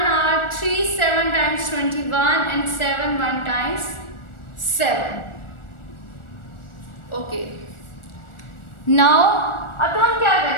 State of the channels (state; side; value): late; right; 1.4 ms